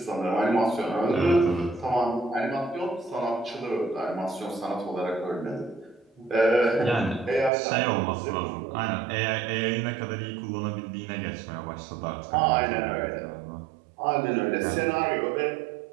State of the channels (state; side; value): drops out; left; at 7.5 s